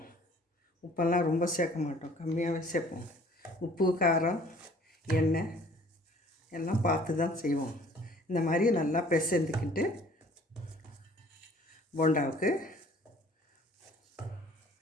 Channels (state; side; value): normal; both; correlation 0.54